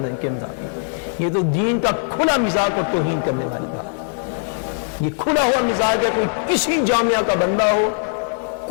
یہ تو دین کا کھلا مزاج اور توہین کرنے والی بات۔ یہ کھلا ہوا مزاج ہے، کوئی کسی جامعہ کا بندہ ہو،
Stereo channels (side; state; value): right; silent; 64 dB below the other